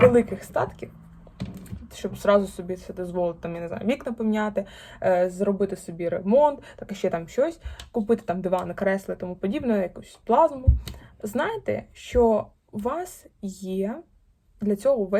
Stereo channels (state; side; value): identical; both; correlation 1.00